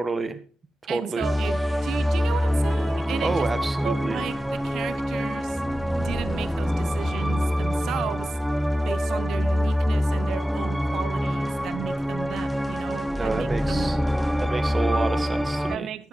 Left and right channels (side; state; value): both; normal; correlation 0.94